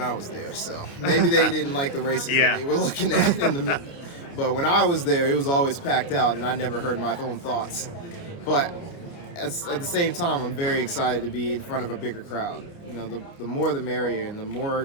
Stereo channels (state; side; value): late; right; 29 ms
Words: I was there, so maybe they didn't like the races that they were looking at in the. But when I was there, it was always packed out, and I never heard my own thoughts. But at the same time, I'm very excited to be in front of a bigger crowd. The more the merrier, and the